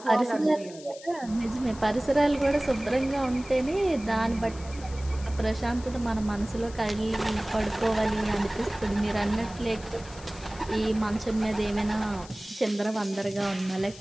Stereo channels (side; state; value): left; noise; hiss, 18 dB below the sound